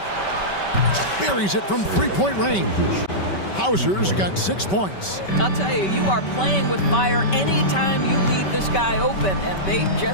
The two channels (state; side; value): late; right; 5.2 ms